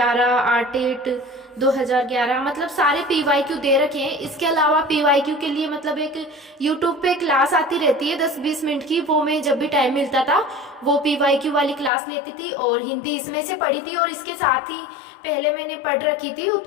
आरटेट 2011, मतलब सारे PYQ दे रखे हैं। इसके अलावा PYQ के लिए मतलब एक YouTube पे क्लास आती रहती है 10-20 मिनट की, वो मैं जब भी टाइम मिलता था वो PYQ वाली क्लास लेती थी और हिंदी इसमें से पढ़ी थी। और इसके साथ ही पहले मैंने पढ़ रखी थी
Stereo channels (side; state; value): right; drops out; at 11.9 s